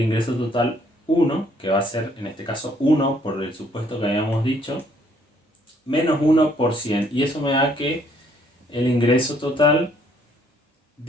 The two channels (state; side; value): normal; both; correlation 0.65